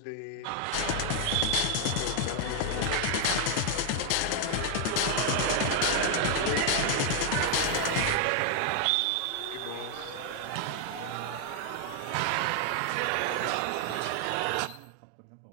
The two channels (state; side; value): different; both; correlation 0.00